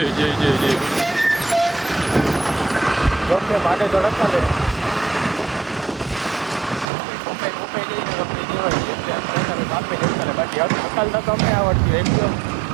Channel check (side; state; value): left; drops out; at 6.9 s